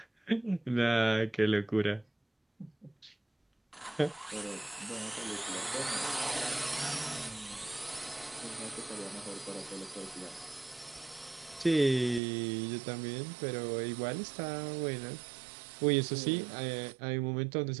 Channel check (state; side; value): drops out; left; at 12.2 s